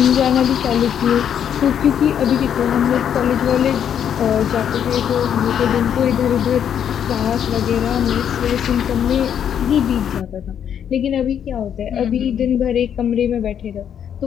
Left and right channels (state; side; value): quieter; right; 8.9 dB